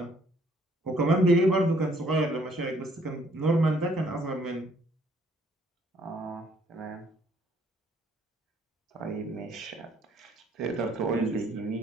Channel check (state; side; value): normal; both; correlation 0.64